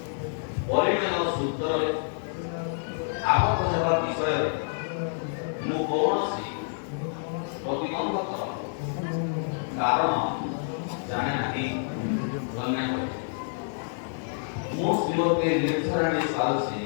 ପରିଣୟ ସୂତ୍ରରେ ଆବଦ୍ଧ ହେବା ବିଷୟରେ ମୁଁ କୌଣସି ପ୍ରତିବନ୍ଧକ କାରଣ ଜାଣେ ନାହିଁ। କନ୍ୟା ମୁଁ ଶ୍ରୀମତୀ ନିର୍ଝରାଣୀ ସ୍ୱାଲ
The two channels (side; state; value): right; silent; 59 dB below the other